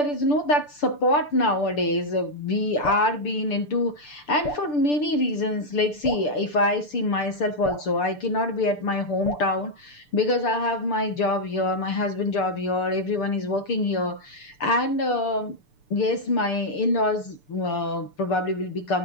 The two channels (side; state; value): right; late; 6.8 ms